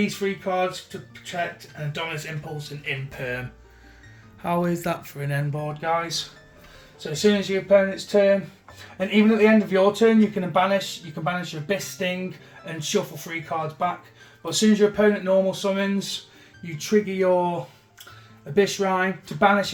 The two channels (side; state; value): both; identical; correlation 1.00